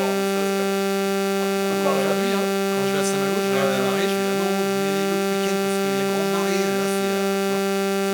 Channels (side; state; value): both; identical; correlation 1.00